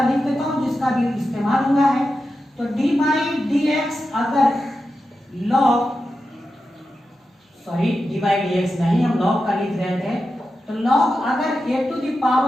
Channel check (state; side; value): normal; both; correlation 0.90